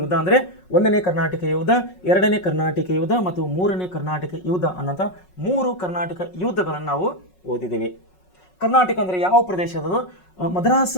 ಅಂದರೆ 1ನೇ ಕರ್ನಾಟಕ ಯುದ್ಧ, 2ನೇ ಕರ್ನಾಟಕ ಯುದ್ಧ ಮತ್ತು 3ನೇ ಕರ್ನಾಟಕ ಯುದ್ಧ ಅನ್ನೋಂಥ 3 ಕರ್ನಾಟಕ ಯುದ್ಧಗಳನ್ನು ನಾವು ಓದಿದ್ದೀವಿ. ಕರ್ನಾಟಕ ಅಂದರೆ ಯಾವ ಪ್ರದೇಶದದು? ಮದ್ರಾಸ್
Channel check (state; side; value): late; right; 5.4 ms